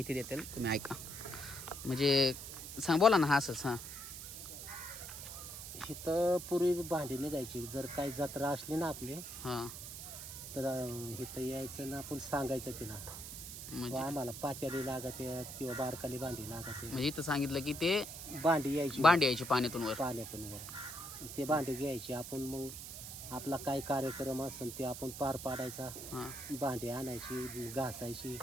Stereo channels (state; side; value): noise; right; hiss, 9 dB below the sound